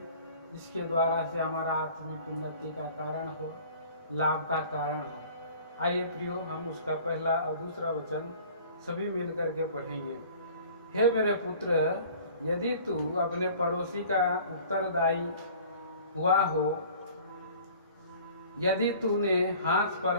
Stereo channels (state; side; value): inverted; both; correlation -0.48